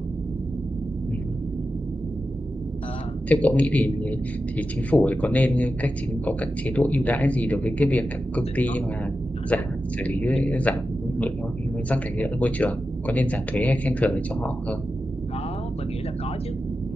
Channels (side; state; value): both; normal; correlation 0.91